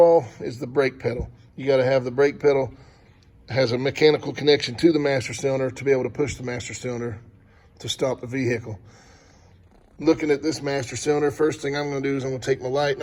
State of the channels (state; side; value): identical; both; correlation 1.00